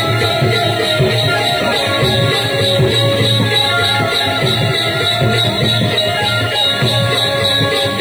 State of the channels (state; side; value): noise; left; hiss, 23 dB below the sound